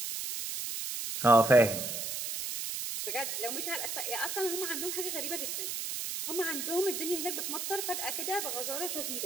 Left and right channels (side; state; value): right; noise; hiss, 3 dB below the sound